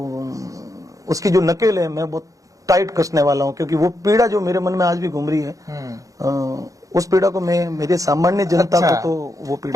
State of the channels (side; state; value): left; late; 0.16 ms